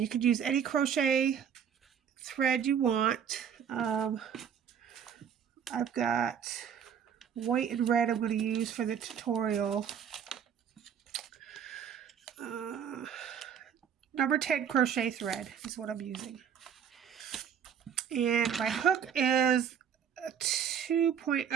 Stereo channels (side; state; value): left; quieter; 8.2 dB